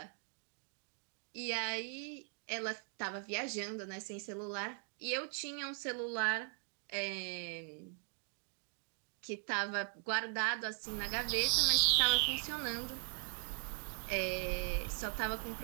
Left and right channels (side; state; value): left; silent; 51 dB below the other